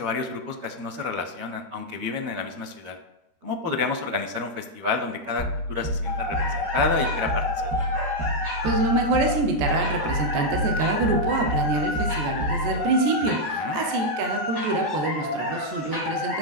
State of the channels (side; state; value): left; late; 13 ms